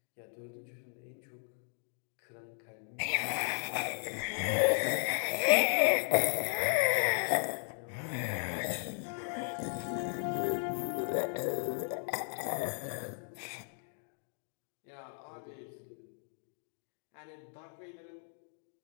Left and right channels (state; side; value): silent; right; 54 dB below the other